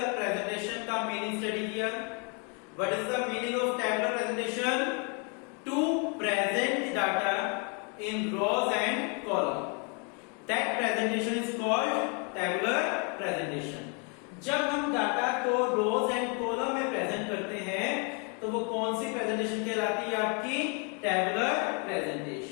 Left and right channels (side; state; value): right; quieter; 36.0 dB